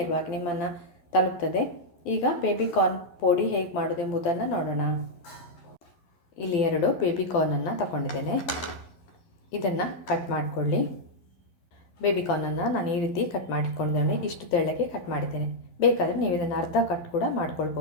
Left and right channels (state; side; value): late; right; 12 ms